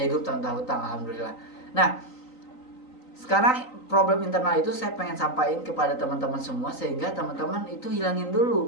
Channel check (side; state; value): right; late; 3.9 ms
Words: hidup tanpa hutang, alhamdulillah. Nah, sekarang problem internal itu saya pengen sampaikan kepada teman-teman semua sehingga teman-teman itu hilangin